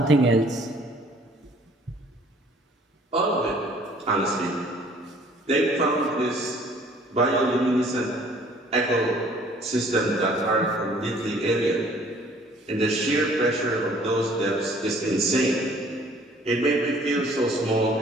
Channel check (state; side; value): normal; both; correlation 0.56